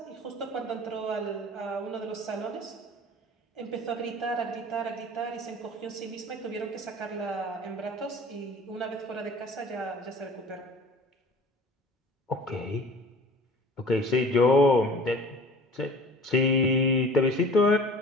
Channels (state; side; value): normal; both; correlation 0.44